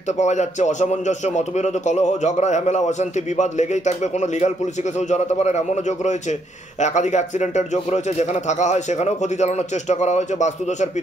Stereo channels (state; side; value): normal; both; correlation 0.73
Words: পাওয়া যাচ্ছে। অসামঞ্জস্য, মতবিরোধ, কলহ, ঝগড়া, ঝামেলা, অশান্তি, বিবাদ লেগেই থাকবে। কোনো লিগাল পুলিশে কেউ জড়াতে পারেন এমনও যোগ রয়েছে। একাধিক অ্যাক্সিডেন্টের যোগ রয়েছে, যেখানে থাকা হয় সেখানেও ক্ষতি চালানোর চেষ্টা করা হয়েছে। বাস্তুদোষ আর